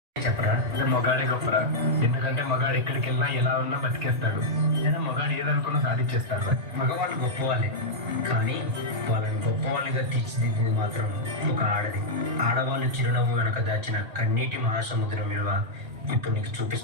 చెప్పరా? మగాడే గొప్పరా. ఎందుకంటే మగాడు ఎక్కడికి వెళ్ళినా ఎలా ఉన్నా బతికేస్తాడు. లేదా మగాడు ఏదనుకున్నా సాధించేస్తాడు. మగవాళ్ళు గొప్పవాళ్ళే, కానీ వాళ్ళని గొప్పవాళ్ళుగా తీర్చిదిద్దింది మాత్రం ఒక ఆడది. ఆడవాళ్ళు చిరునవ్వు వెనక దాచిన కన్నీటి మహాసముద్రం విలువ ఇప్పుడు నీకు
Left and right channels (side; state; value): left; late; 1.8 ms